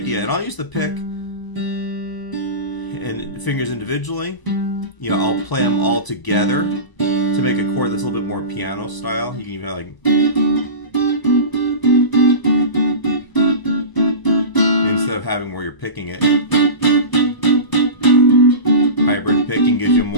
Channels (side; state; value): right; late; 1.0 ms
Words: And I'll use the pick and fingers individually. I'll play them all together to make a chord that's a little bit more piano style. You can even have like, instead of having where you're picking it. Hybrid picking gives you